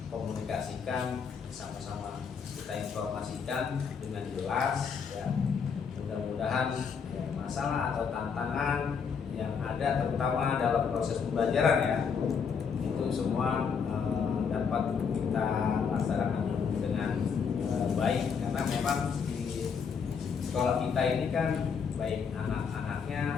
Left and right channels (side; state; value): right; quieter; 6.3 dB